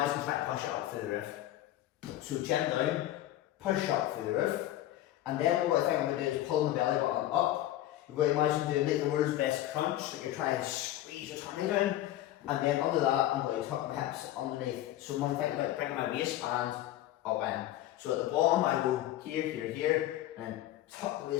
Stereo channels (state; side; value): quieter; right; 13.9 dB